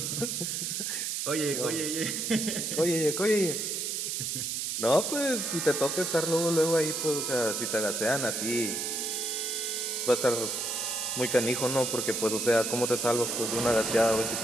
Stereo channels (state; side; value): noise; right; hiss, 2 dB below the sound